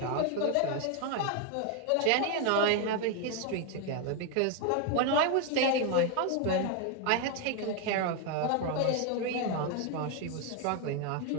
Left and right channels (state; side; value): different; both; correlation 0.01